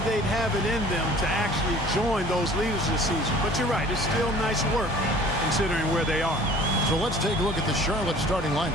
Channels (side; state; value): both; normal; correlation 0.49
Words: they'd have it in them to actually join those leaders this season. But you're right, it's still nice work considering where they are. So let's take a look at the Charlotte starting